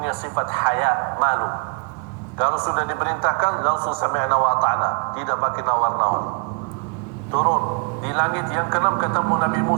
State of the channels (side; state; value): left; quieter; 39.0 dB